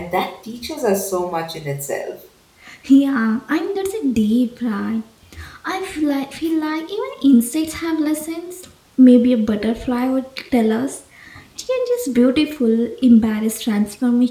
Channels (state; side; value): identical; both; correlation 1.00